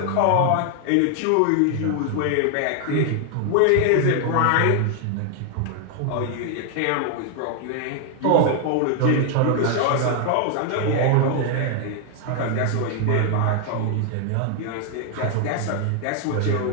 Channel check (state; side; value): different; both; correlation 0.00